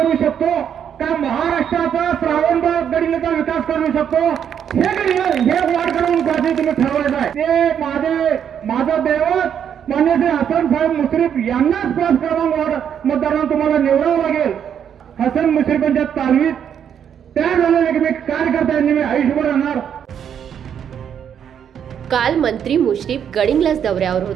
शकतो का महाराष्ट्राचा श्रावणबाग गडिंगचा विकास करू शकतो हे वाढ करून कधी तुम्ही ठरवायचं आहे. ते माझं दैवत मान्य श्री हसन साहेब मुश्रीफ यांनाच 5 क्रमांक वार्ड मतदारांना तुम्हाला निवडावं लागेल. हसन मुश्रीफांच्या तालमीत त्या झालेले की मी कार्यकर्त्यांनी मी आयुष्यभर राहणार. काल मंत्री मुश्रीफ गडिंग्लज दौऱ्यावर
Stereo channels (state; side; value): quieter; left; 8.6 dB